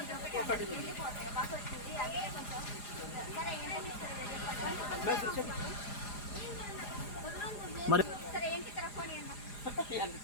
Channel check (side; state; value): right; late; 4.9 ms